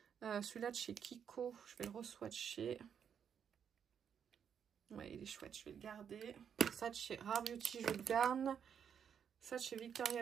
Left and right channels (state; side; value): quieter; left; 7.9 dB